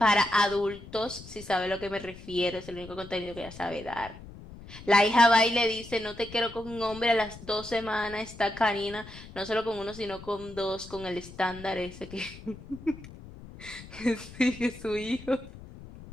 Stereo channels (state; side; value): noise; left; rumble, 16 dB below the sound